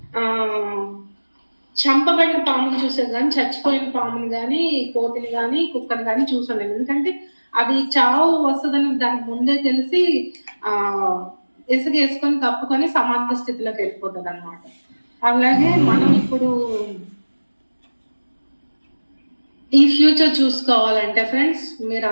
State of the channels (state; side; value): inverted; both; correlation -1.00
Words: చంపబడిన పాముని చూసేది కానీ చచ్చిపోయిన పాముని కానీ కోతిని కానీ కుక్కని కానీ చూసాను. ఎందుకంటే అది చావు వస్తుందని దానికి ముందే తెలిసి ఇసుక వేసుకొని కప్పుకొని సమాధి స్థితిలోకి వెళ్ళిపోతుంది అనమాట. అలాగే మనం ఇప్పుడు ఈ ఫ్యూచర్ చూసుకోవాలంటే ఫ్రెండ్స్, మీరు